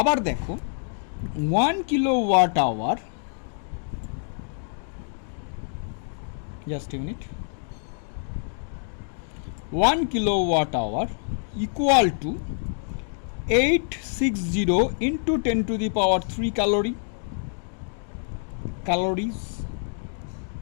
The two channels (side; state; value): right; silent; digital silence